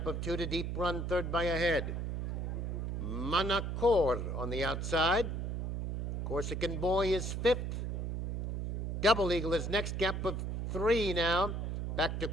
of 2 to Deep Run, third by a head. Monacord on the outside. Corsican Boy is fifth. Double Eagle is next, gap of 3 now. Back to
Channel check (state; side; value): noise; right; hum, 2 dB below the sound